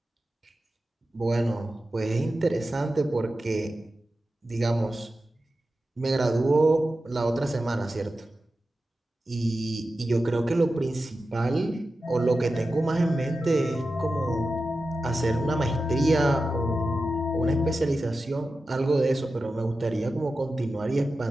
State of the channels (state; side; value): normal; both; correlation 0.92